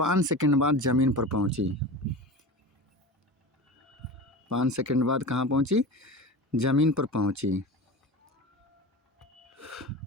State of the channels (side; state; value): both; normal; correlation 0.30